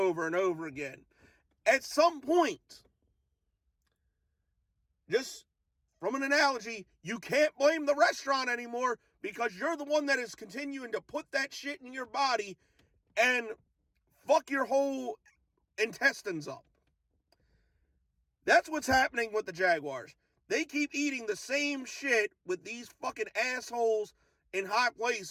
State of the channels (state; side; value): identical; both; correlation 1.00